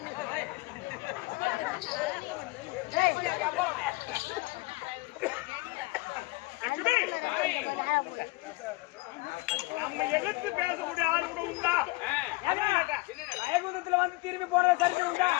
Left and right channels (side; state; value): right; quieter; 23.6 dB